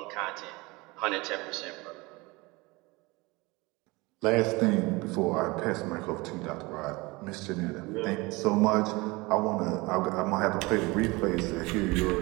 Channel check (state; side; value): quieter; left; 23.7 dB